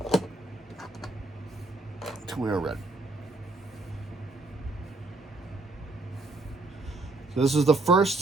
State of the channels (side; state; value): left; quieter; 3.0 dB